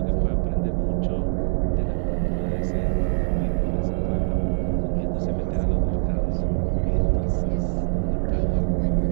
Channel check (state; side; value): silent; left; digital silence